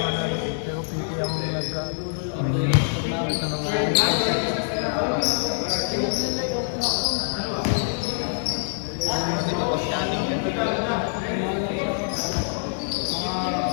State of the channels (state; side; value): silent; right; digital silence